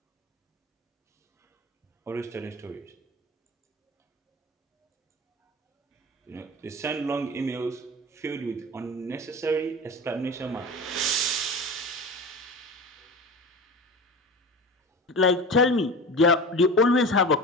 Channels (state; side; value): normal; both; correlation 0.31